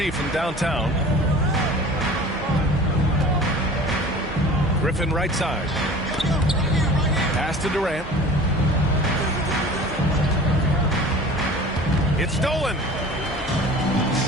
from downtown. Griffin right side. Pass to Durant. It's stolen.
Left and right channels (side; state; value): both; normal; correlation 0.42